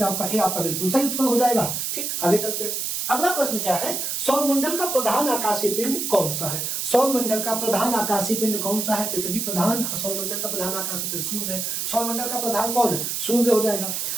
आपका ए आपका बिल्कुल सही उत्तर हो जाएगा। ठीक, आगे चलते हैं। अगला प्रश्न क्या है, सौरमंडल का प्रधान आकाशीय पिंड कौन सा है। सौरमंडल का प्रधान आकाशीय पिंड कौन सा है, पृथ्वी प्रधान, सौरमंडल का प्रधान आकाशीय पिंड सूर्य है। सौरमंडल का प्रधान कौन है, सूर्य हो जाएगा।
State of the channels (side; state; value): right; noise; hiss, 2 dB below the sound